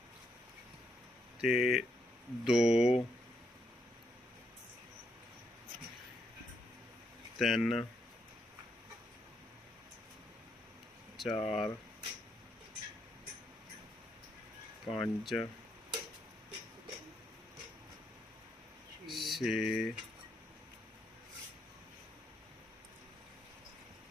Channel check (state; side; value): normal; both; correlation 0.77